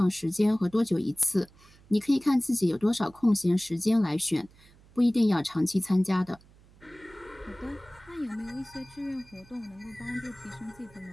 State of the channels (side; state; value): right; noise; hum, 26 dB below the sound